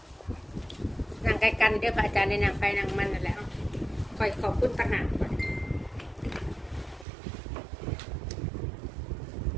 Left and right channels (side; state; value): left; drops out; at 7.1 s